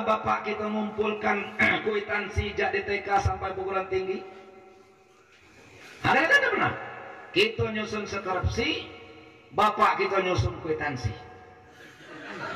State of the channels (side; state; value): both; identical; correlation 1.00